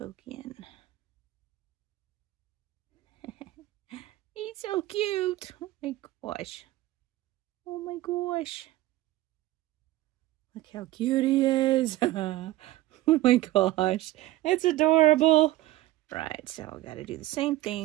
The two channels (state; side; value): quieter; left; 16.8 dB